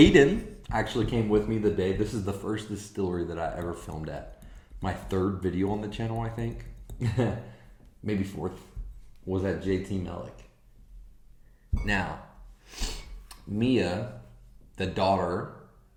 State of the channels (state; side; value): identical; both; correlation 1.00